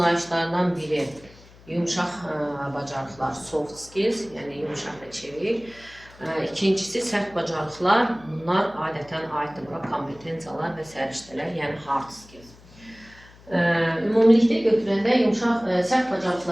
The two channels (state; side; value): noise; left; hum, 24 dB below the sound